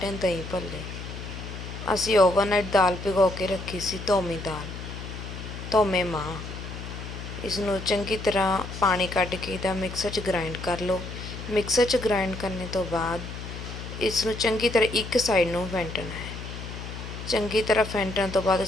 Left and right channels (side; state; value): left; noise; hum, 9 dB below the sound